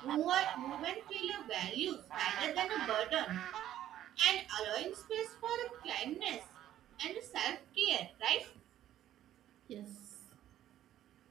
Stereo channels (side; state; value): left; quieter; 12.2 dB